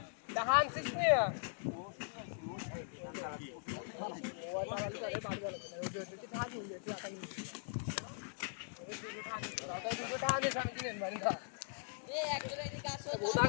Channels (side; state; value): right; silent; 51 dB below the other